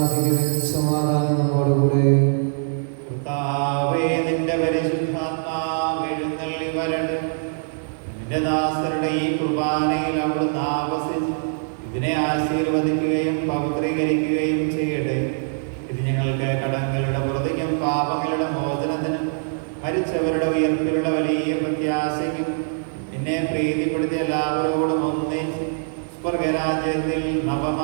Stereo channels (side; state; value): left; silent; 63 dB below the other